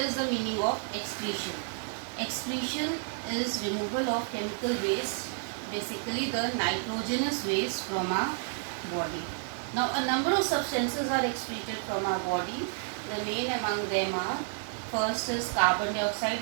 the meaning of excretion. Excretion is removal of chemical waste, basically the nitrogenous waste from our body. Now a number of substances are excreted from our body. The main among them are, first is carbon dioxide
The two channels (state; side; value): silent; left; 57 dB below the other